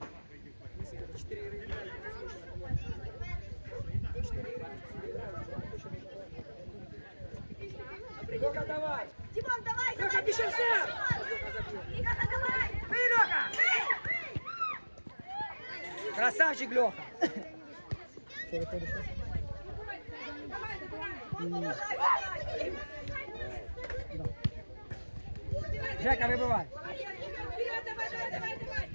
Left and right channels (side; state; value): both; inverted; correlation -1.00